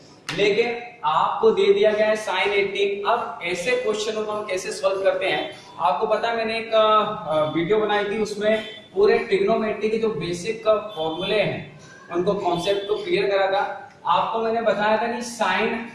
लेकिन आपको दे दिया गया है साइन 18। अब ऐसे क्वेश्चनों को हम कैसे सॉल्व करते हैं, आपको पता है मैंने एक वीडियो बनाई थी, उसमें पूरे ट्रिग्नोमेट्री के जो बेसिक फॉर्मूले हैं उनको कॉन्सेप्ट को क्लियर करा था। आपको मैंने बताया था कि साइन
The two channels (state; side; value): identical; both; correlation 1.00